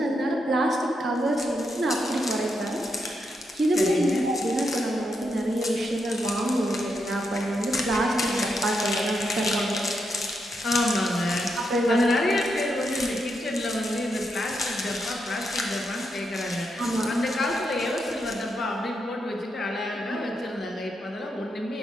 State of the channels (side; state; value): both; normal; correlation 0.82